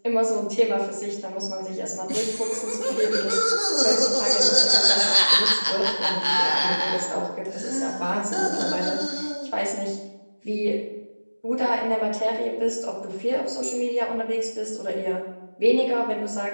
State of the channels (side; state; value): both; inverted; correlation -1.00